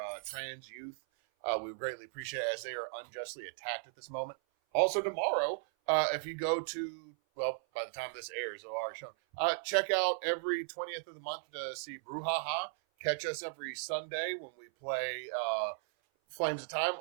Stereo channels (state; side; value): silent; left; 54 dB below the other